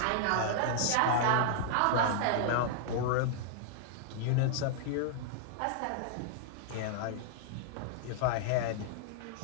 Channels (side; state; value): both; different; correlation -0.01